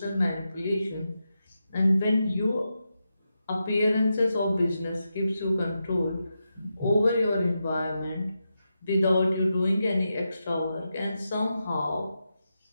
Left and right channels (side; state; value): both; inverted; correlation -0.88